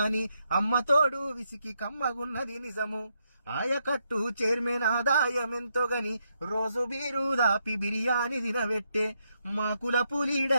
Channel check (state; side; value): inverted; both; correlation -0.80